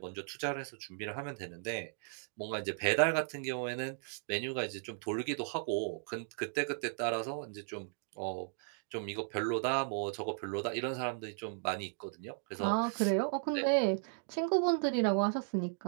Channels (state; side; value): silent; left; digital silence